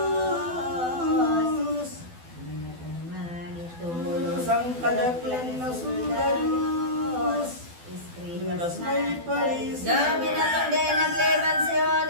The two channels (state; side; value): late; left; 12 ms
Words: kadaklan na soldados, lunas may palis. Gabi na tong day nagliban si